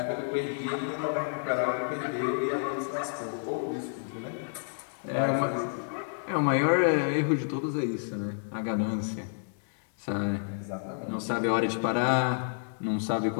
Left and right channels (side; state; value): right; silent; digital silence